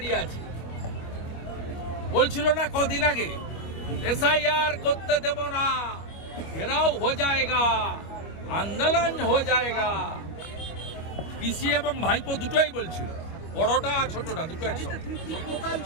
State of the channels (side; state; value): right; late; 25 ms